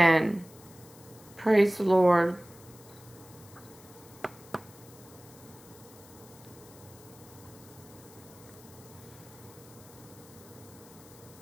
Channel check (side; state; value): left; noise; hiss, 22 dB below the sound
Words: Praise the Lord.